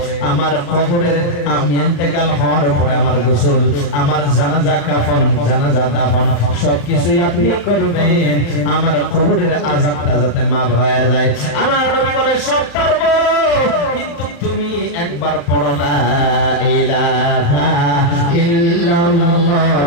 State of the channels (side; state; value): right; late; 35 ms